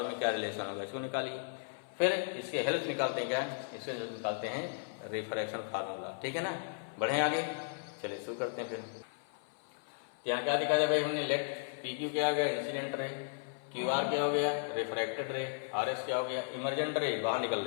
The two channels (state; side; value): silent; right; 54 dB below the other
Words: में क्या रिलेशन होगा, इसको निकालिए। फिर इसके हेल्प निकालते हैं, क्या इसके निकालते हैं रिफ्रैक्शन फार्मूला। ठीक है ना? बढ़े आगे, चलिए शुरू करते हैं। फिर यहाँ क्या दिखा दिया भाई हमने? लेट PQ क्या हो गया? Incident ray. QR क्या हो गया? रिफ्रैक्टेड रे। RS क्या हो गया? इमर्जेंट रे, बाहर निकल